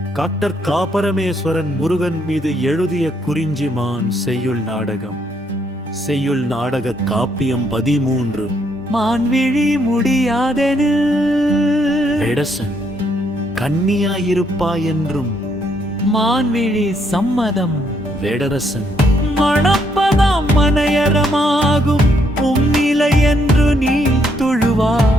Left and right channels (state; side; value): normal; both; correlation 0.73